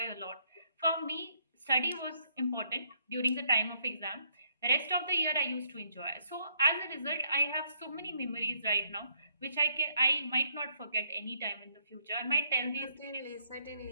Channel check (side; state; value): both; inverted; correlation -0.70